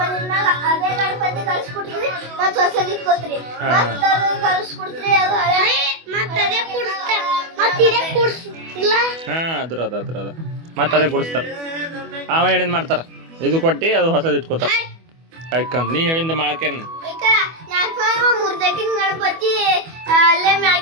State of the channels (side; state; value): left; late; 24 ms